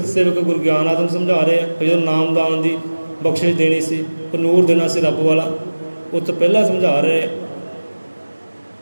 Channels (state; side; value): inverted; both; correlation -1.00